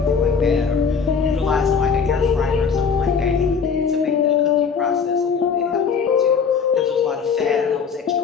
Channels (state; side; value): quieter; right; 6.0 dB